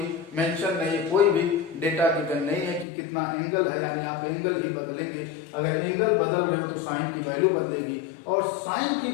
मेंशन नहीं है, कोई भी डेटा गिवन नहीं है कि कितना एंगल है, यानी आप एंगल ही बदलेंगे। अगर एंगल बदल रहे हो तो साइन की वैल्यू बदलेगी, और साइन की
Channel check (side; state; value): right; drops out; at 2.9 s